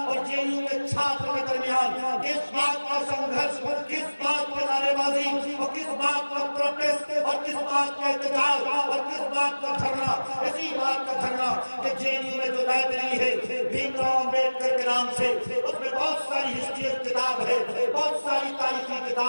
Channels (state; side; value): inverted; both; correlation -1.00